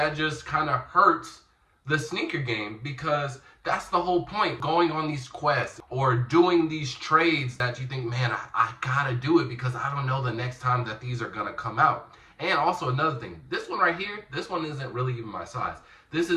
just kind of hurts the sneaker game because that's the whole point, going on these quests or doing these trades that you think, man, I gotta do it because I don't know the next time that these are gonna come out. And also another thing, this one right here, this one isn't really even my size. This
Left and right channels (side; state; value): both; identical; correlation 1.00